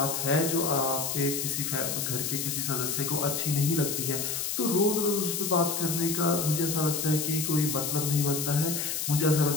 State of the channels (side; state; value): left; noise; hiss, 2 dB below the sound